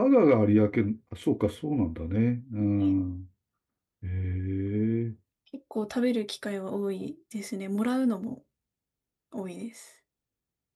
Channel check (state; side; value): identical; both; correlation 1.00